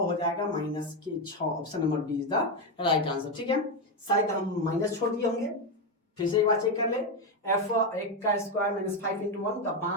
जाएगा माइनस के 6, option number D is the right answer. ठीक है, शायद हम माइनस छोड़ दिए होंगे, फिर से एक बार चेक कर ले, f1 का स्क्वायर माइनस 5 इंटू 1 तो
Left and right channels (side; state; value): both; normal; correlation 0.09